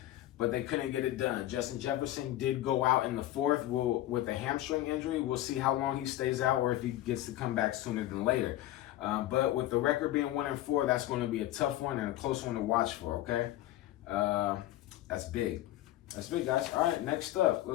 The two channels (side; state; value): right; quieter; 14.6 dB